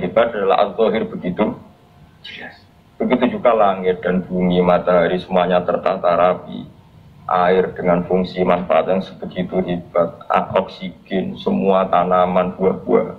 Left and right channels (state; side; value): identical; both; correlation 1.00